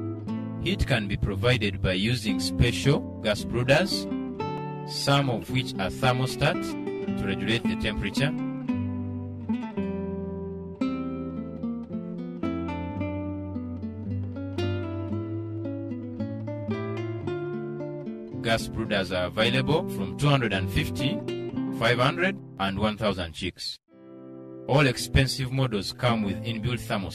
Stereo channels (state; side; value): identical; both; correlation 1.00